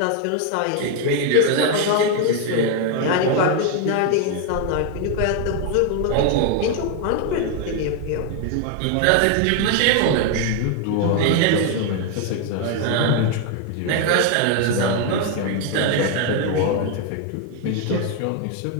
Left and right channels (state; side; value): different; both; correlation 0.01